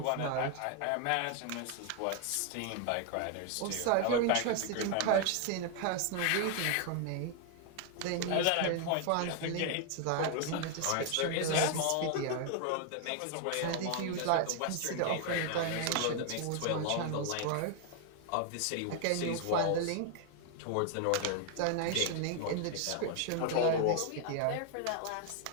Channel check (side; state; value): both; different; correlation 0.00